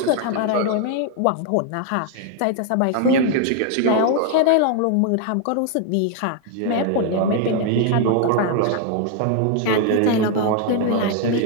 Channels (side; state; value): both; different; correlation 0.00